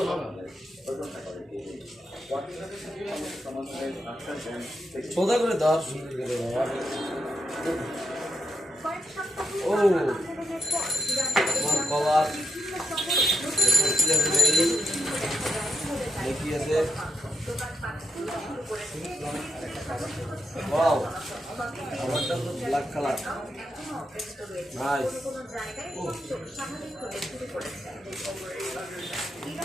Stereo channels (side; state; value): both; normal; correlation 0.81